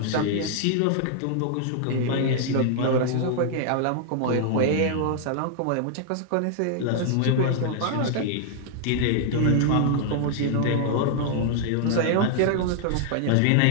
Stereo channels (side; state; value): both; different; correlation -0.01